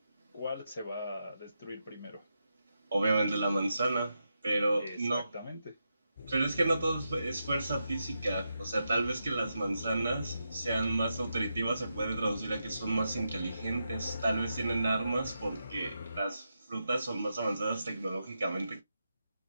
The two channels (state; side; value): inverted; both; correlation -0.86